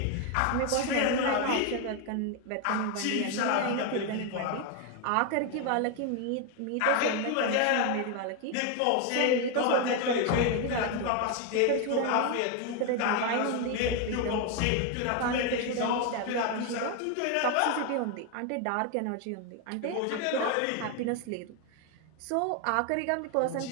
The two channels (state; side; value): different; both; correlation 0.01